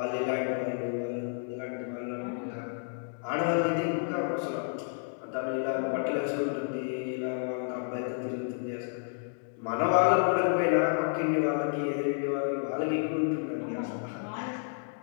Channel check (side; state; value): right; silent; 57 dB below the other